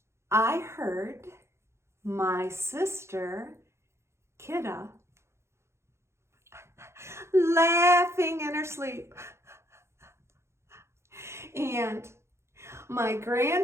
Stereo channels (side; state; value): left; late; 0.13 ms